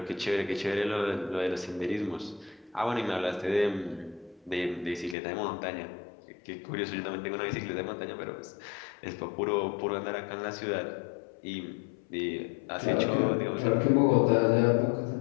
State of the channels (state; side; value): drops out; right; at 5.2 s